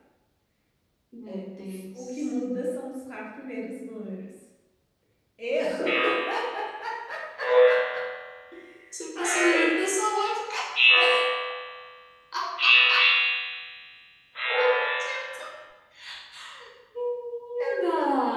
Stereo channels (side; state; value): both; identical; correlation 1.00